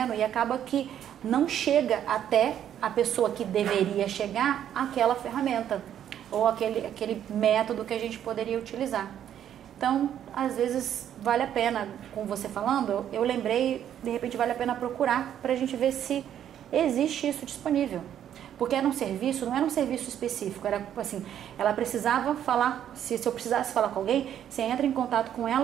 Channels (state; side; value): quieter; left; 10.1 dB